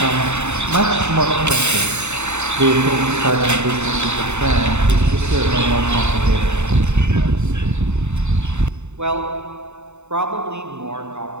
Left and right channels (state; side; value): late; left; 0.82 ms